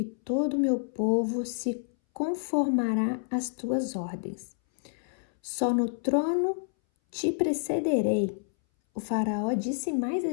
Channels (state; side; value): silent; right; 59 dB below the other